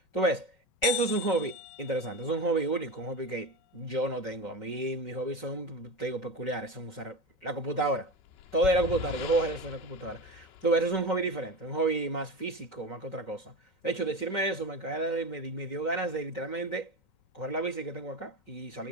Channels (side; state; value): right; late; 5.3 ms